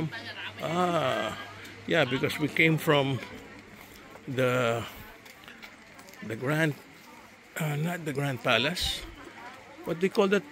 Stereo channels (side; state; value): both; identical; correlation 1.00